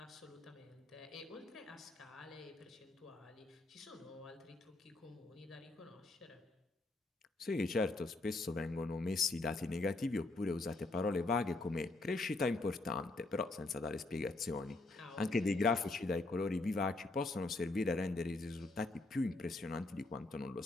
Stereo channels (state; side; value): quieter; right; 3.1 dB